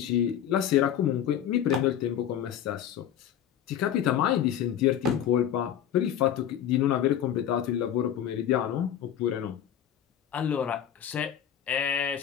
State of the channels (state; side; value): quieter; right; 10.0 dB